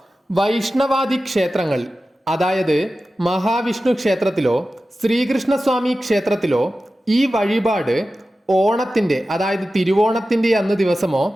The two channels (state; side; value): normal; both; correlation 0.94